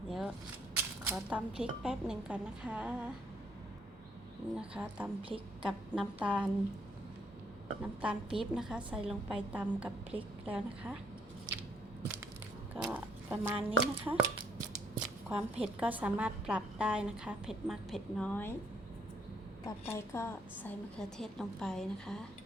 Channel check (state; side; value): normal; both; correlation 0.67